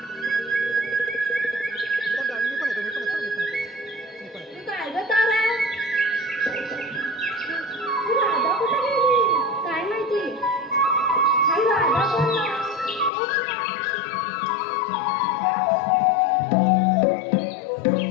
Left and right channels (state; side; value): drops out; right; at 13.1 s